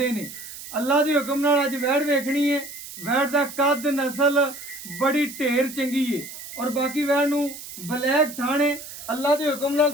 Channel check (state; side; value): noise; right; hiss, 12 dB below the sound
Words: है। अल्लाह दे हुक्म नाल अज वैड़ वेखनी है। वैड़ दा कद नस्ल बड़ी ढेर चंगी है और बाकी वैड़ नूं ब्लैक थाने अल्लाह के हुक्म नाल